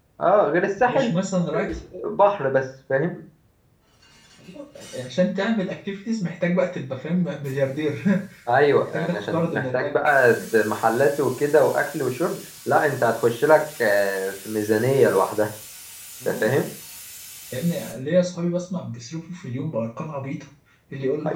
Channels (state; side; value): identical; both; correlation 1.00